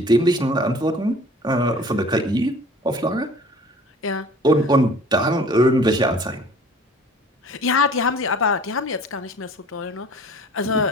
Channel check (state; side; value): normal; both; correlation 0.48